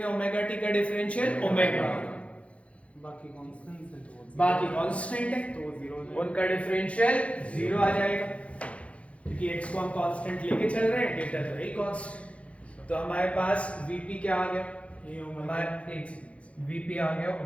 ओमेगा t का डिफरेंशियल ओमेगा, बाकी कांस्टेंट है तो उनका डिफरेंशियल 0 आ जाएगा, क्योंकि x को हम कांस्टेंट लेके चल रहे हैं, डेल्टा तो वही कांस्टेंट। तो हमारे पास vp क्या आ गया? हमारे vp आ गया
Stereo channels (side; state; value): right; late; 0.063 ms